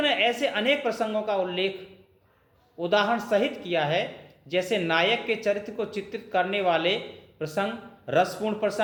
ने ऐसे अनेक प्रसंगों का उल्लेख उदाहरण सहित किया है, जैसे नायक के चरित्र को चित्रित करने वाले प्रसंग, रसपूर्ण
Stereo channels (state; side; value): identical; both; correlation 1.00